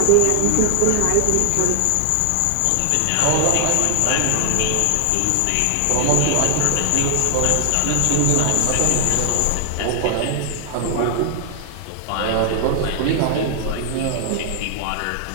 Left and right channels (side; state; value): both; different; correlation 0.00